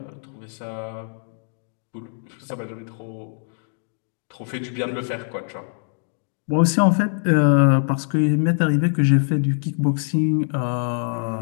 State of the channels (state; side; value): silent; right; 63 dB below the other